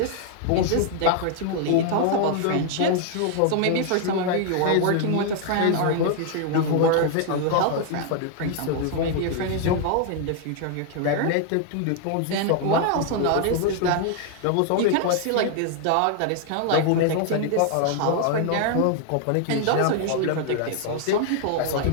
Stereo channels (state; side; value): different; both; correlation 0.00